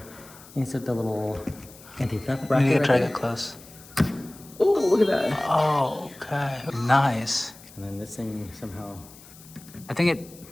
insert the little anti-theft bracket. You need to try right it close. Oh, look at that! Oh, okay. Nice. And then this thing somehow. I think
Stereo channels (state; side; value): noise; left; hiss, 21 dB below the sound